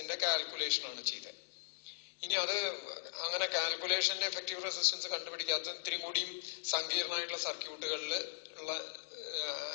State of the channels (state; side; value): silent; right; digital silence